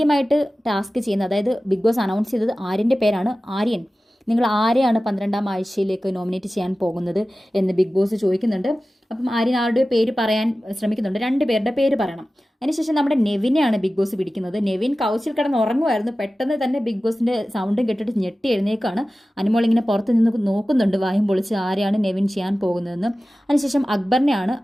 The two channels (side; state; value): both; normal; correlation 0.95